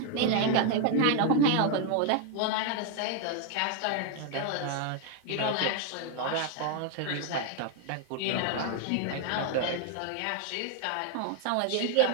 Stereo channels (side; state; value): both; different; correlation 0.01